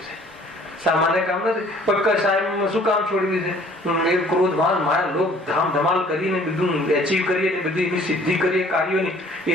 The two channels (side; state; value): both; normal; correlation 0.55